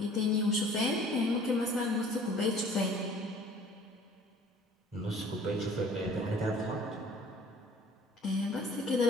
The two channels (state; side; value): normal; both; correlation 0.51